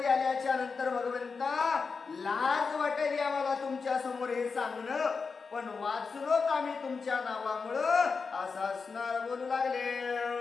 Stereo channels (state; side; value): quieter; right; 4.9 dB